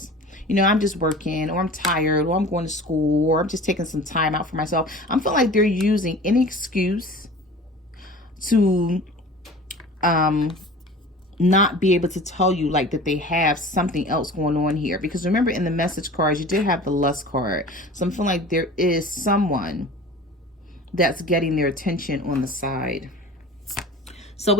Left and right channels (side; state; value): both; normal; correlation 0.40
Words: You know, I'm just working, or I'm tired, or I'm going to school, or I'm just taking some time out for myself. I'm feeling like they're using any excuse to not be able to tell you like that they have something else going on here. Because remember, in the message cards, you did have the Lust card. So I'm feeling like there is someone that's getting their attention on the side. So